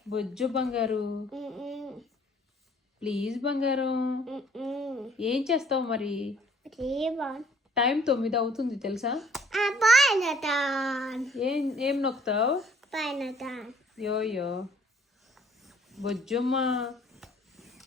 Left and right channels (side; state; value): both; normal; correlation 0.58